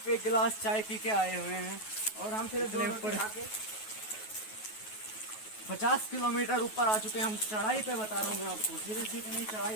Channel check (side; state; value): right; late; 9.3 ms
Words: 1 गिलास चाय पी के आए हुए हैं, और हम सिर्फ इतने 2 ऊपर। रोटी खा के 50 किलोमीटर ऊपर आ चुके हैं हम। चढ़ाई पे बता रहा हूँ मैं आपको, सीधे सीधे नहीं, चढ़ाई